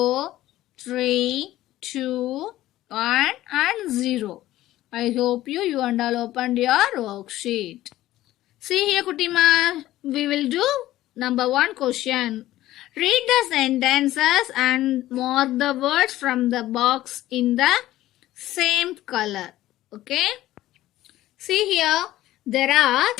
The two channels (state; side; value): quieter; right; 15.1 dB